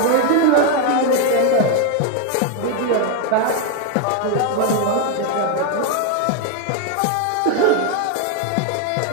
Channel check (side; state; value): both; different; correlation 0.01